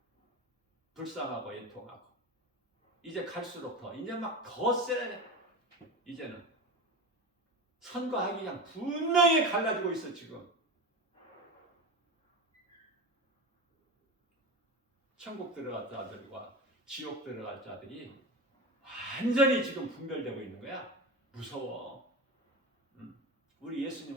불쌍하고 애통하고 이제 갈수록 이제 막 더 세. 이제는 선과 악이 그냥 분명히 갈라지고 있어. 지금 천국 들어갈 자들과 지옥 들어갈 자들이 완전히 지금 분별되고 있는 거야. 무서워. 우리 예수님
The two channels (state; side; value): normal; both; correlation 0.25